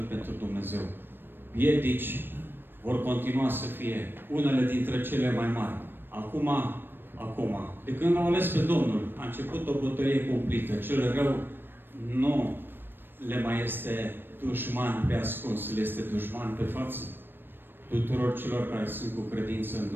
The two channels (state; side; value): late; left; 0.097 ms